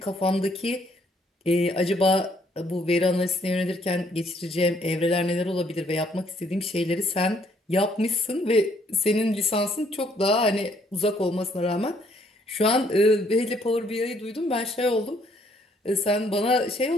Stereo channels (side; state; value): both; normal; correlation 0.66